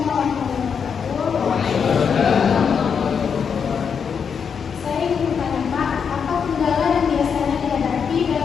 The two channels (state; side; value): quieter; right; 6.7 dB